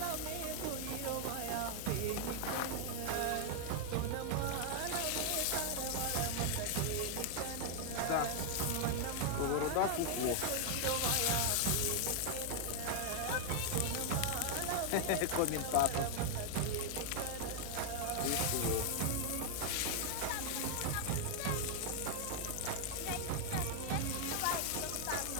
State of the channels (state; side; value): different; both; correlation 0.00